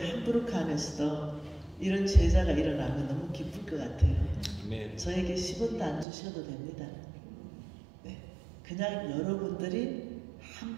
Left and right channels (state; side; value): drops out; left; at 6.1 s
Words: 안에서도 이런 제자가 일어나면 너무 기쁠 것 같아요. 저에게 10원도 안 주셔도 됩니다. 네. 그냥 여러분들이